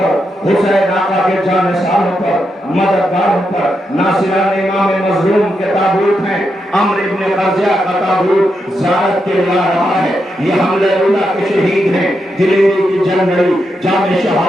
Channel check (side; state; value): both; normal; correlation 0.84